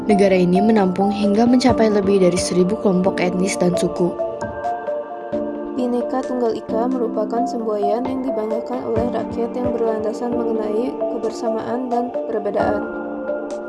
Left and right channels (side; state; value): both; identical; correlation 1.00